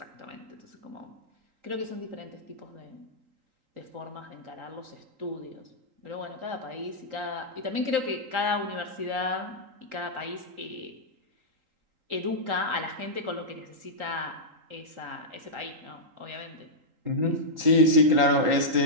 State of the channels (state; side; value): late; left; 3.8 ms